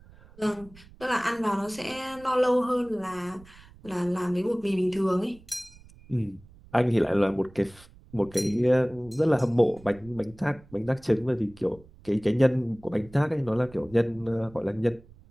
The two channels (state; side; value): noise; right; rumble, 23 dB below the sound